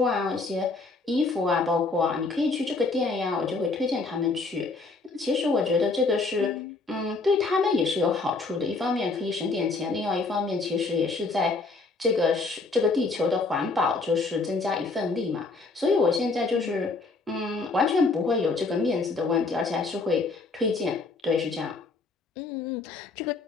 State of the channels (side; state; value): right; quieter; 3.8 dB